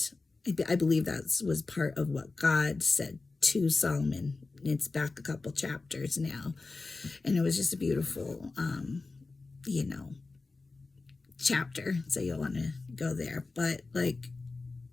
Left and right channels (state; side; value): quieter; right; 3.7 dB